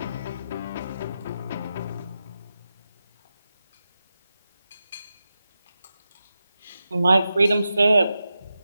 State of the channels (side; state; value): both; inverted; correlation -0.90